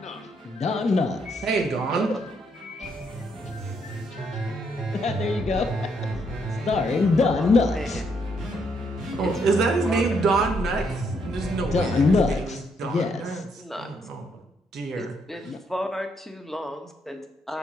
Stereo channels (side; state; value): both; normal; correlation 0.74